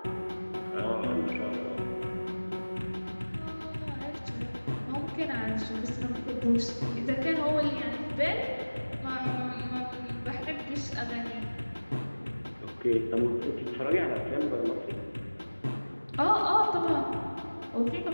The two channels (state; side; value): inverted; both; correlation -1.00